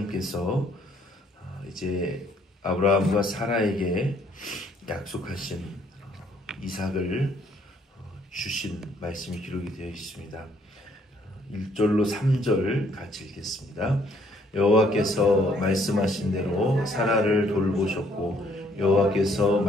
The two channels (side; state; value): both; normal; correlation 0.65